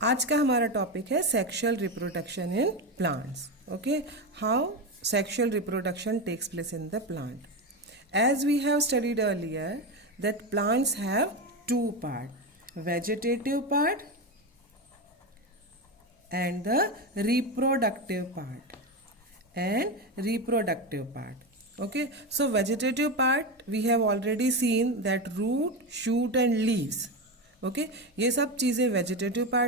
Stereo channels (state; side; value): normal; both; correlation 0.16